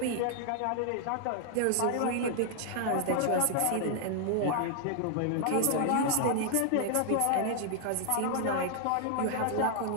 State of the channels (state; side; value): different; both; correlation 0.00